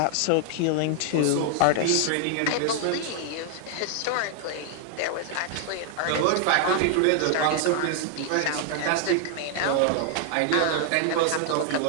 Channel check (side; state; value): both; different; correlation 0.00